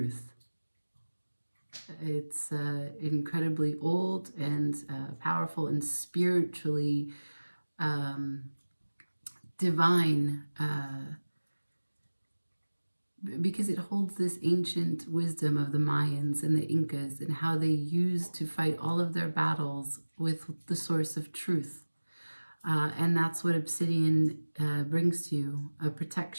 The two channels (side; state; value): both; inverted; correlation -1.00